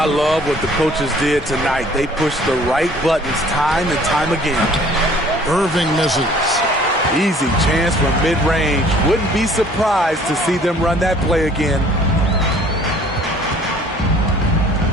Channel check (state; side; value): normal; both; correlation 0.54